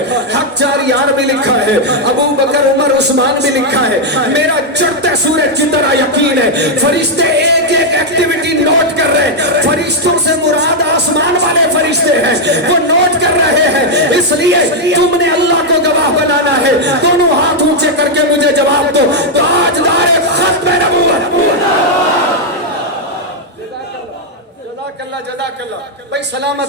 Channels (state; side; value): normal; both; correlation -0.01